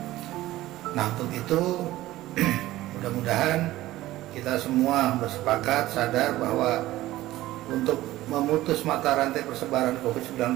Nah, untuk itu mudah-mudahan kita semua bersepakat sadar bahwa untuk memutus mata rantai persebaran COVID-19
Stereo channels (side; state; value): left; quieter; 16.2 dB